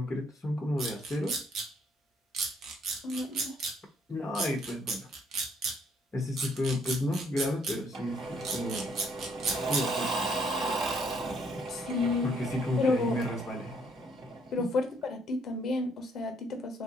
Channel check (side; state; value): both; normal; correlation 0.67